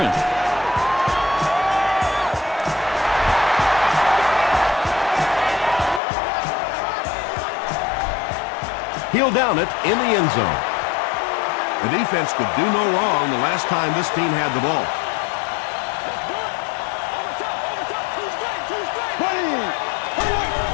He'll down it in the end zone. The defense could do no wrong the last time this team had the ball.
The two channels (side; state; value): right; drops out; at 6.0 s